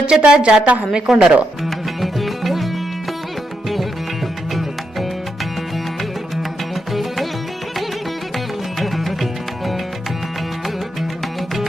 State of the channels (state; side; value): normal; both; correlation 0.83